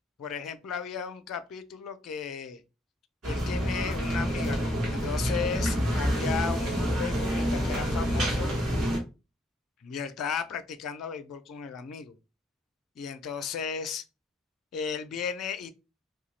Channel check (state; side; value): normal; both; correlation 0.70